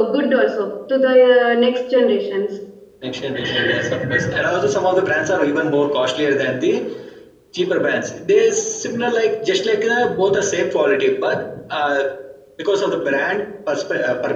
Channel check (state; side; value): identical; both; correlation 1.00